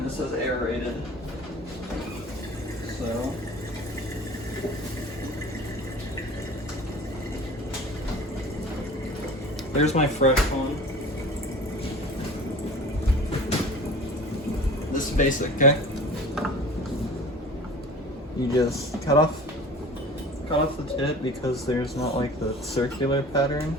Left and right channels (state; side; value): normal; both; correlation 0.41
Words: this is aerated. So, there's my fresh one. This is basic, okay? You just cut off the tip because there's not like the circular pattern